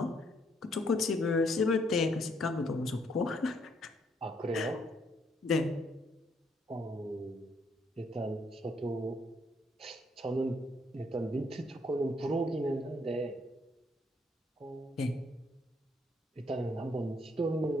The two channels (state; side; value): normal; both; correlation 0.70